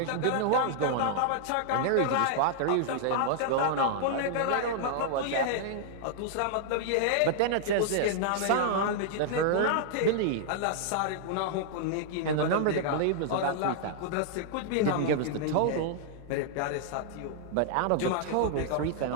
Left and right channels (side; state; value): both; different; correlation -0.01